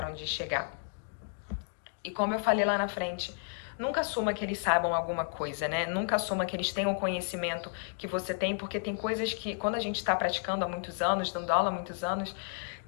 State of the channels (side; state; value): right; silent; 56 dB below the other